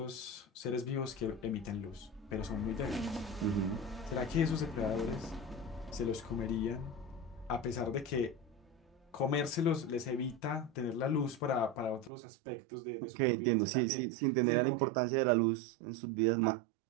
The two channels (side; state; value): left; drops out; at 12.1 s